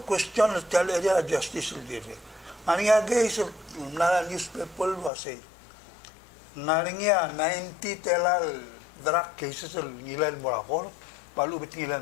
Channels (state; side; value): drops out; right; at 5.1 s